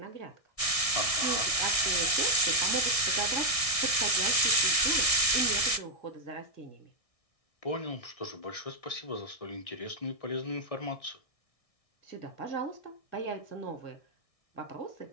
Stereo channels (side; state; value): right; late; 1.6 ms